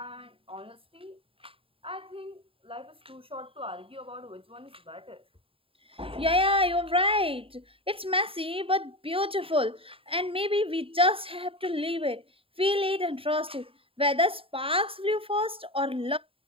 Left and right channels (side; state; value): left; late; 0.27 ms